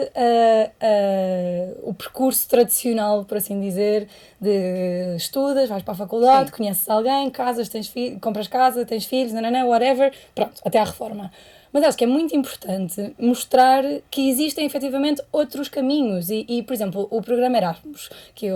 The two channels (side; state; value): both; identical; correlation 1.00